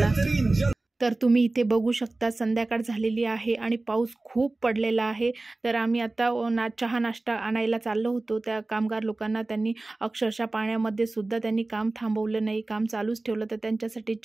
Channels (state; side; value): quieter; left; 3.0 dB